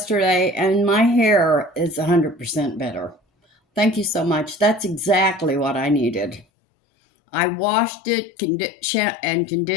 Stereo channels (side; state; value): right; drops out; at 6.5 s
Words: and my hair is 100% better. Thank you so much. That's exactly what I needed. I washed it and